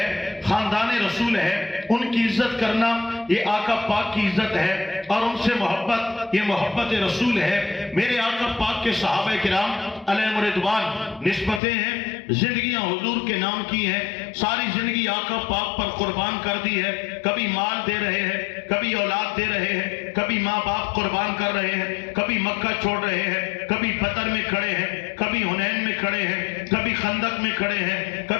خاندان رسول ہے، ان کی عزت کرنا یہ آقا پاک کی عزت ہے، اور ان سے محبت یہ محبت رسول ہے۔ میرے آقا پاک کے صحابہ کرام علیہ رضوان نسبتیں ہیں، زندگیاں حضور کے نام کی ہیں، ساری زندگی آقا پاک پر قربان کر دی ہے، کبھی مال دے رہے ہیں، کبھی اولاد دے رہے ہیں، کبھی ماں باپ قربان کر رہے ہیں، کبھی مکہ چھوڑ رہے ہیں، کبھی بدر میں کھڑے ہیں، کبھی حنین میں کھڑے ہیں، کبھی خندق میں کھڑے ہیں،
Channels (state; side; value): drops out; right; at 11.6 s